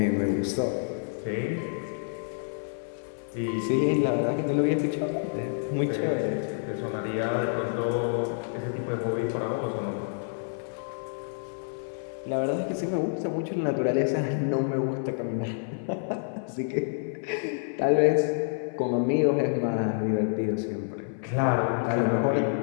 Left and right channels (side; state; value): right; silent; 56 dB below the other